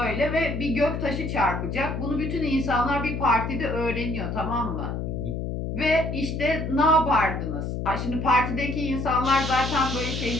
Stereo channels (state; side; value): noise; left; hum, 3 dB below the sound